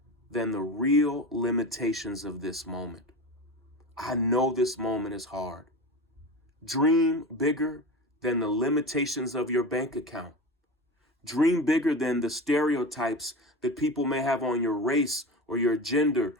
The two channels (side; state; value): both; normal; correlation 0.27